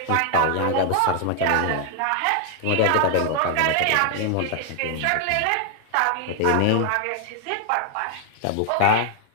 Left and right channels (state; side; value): different; both; correlation 0.00